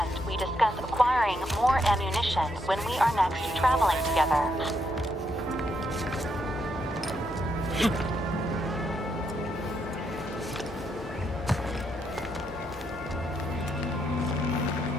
we discuss acquiring more ammunition when we are next traveling together.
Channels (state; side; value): normal; both; correlation 0.78